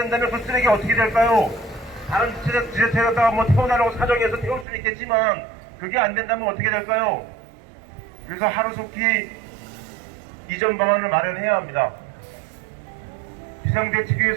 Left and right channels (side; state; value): left; drops out; at 4.7 s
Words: 그 쓰레기 어떻게 될까요? 다른 지자체에다가 뭐 태워달라고 사정해서 태울 수는 있겠지만 그게 안 된다면 어떻게 될까요? 그래서 하루속히 이전 방안을 마련해야 합니다.